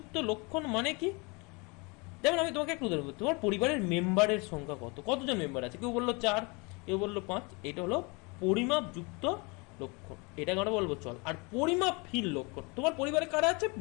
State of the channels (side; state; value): right; quieter; 29.2 dB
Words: লক্ষণ মানে কি? যেমন আমি তোমাকে একটু উদাহরণ বলছি, তোমার পরিবারের মেম্বারের সংখ্যা কত, কতজন মেম্বার আছে? কেউ বললো 4, কেউ বললো 5, এটা হলো পরিমাপ যুক্ত লক্ষণ, এটাকে আমরা বলবো চল। আর পরিমাপহীন লক্ষণ, তোমার পরিবারে কারা আছে,